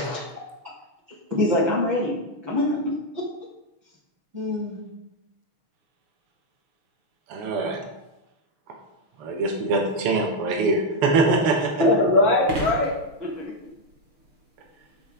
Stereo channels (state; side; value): late; left; 7.0 ms